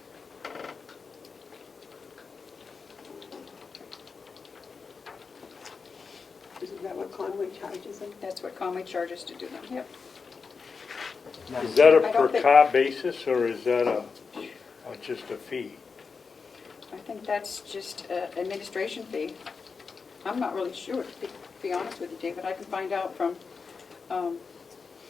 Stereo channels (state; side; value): quieter; right; 5.1 dB